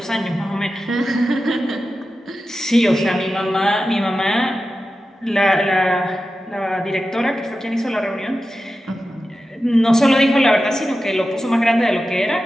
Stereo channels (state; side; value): normal; both; correlation 0.92